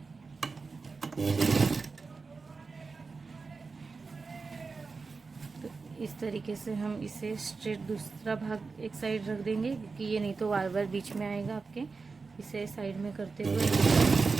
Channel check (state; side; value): quieter; left; 4.4 dB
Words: तो इस तरीके से हम इसे स्ट्रेट दूसरा भाग एक साइड रख देंगे क्योंकि ये नहीं तो बार बार बीच में आएगा आपके। इसे साइड में करते हुए